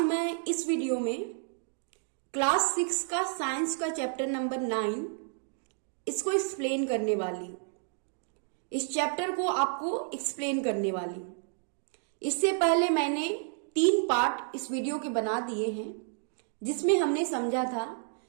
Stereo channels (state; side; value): silent; left; 57 dB below the other